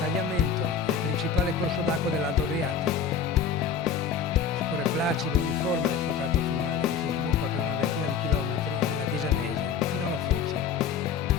è il principale corso d'acqua dell'Alto Adriatico. Scorre placido e uniforme nel suo tratto finale, che si sviluppa per una ventina di chilometri nella Tisanese fino alla Foce.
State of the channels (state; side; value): quieter; right; 6.8 dB